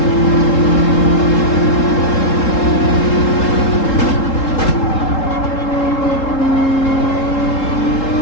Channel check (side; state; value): right; late; 3.7 ms